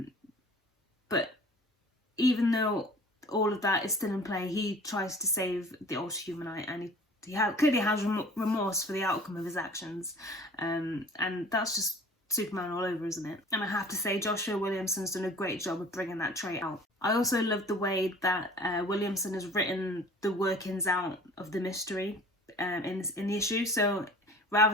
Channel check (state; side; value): normal; both; correlation 0.46